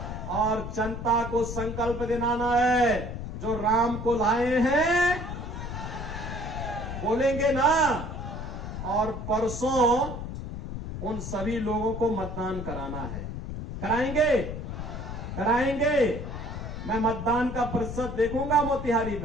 और जनता को संकल्प दिलाना है, जो राम को लाए हैं, बोलेंगे ना? और परसों उन सभी लोगों को मतदान कराना है। कराएंगे? कराएंगे? मैं मतदान का प्रतिशत देखूंगा मोतिहारी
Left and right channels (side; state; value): left; noise; rumble, 7 dB below the sound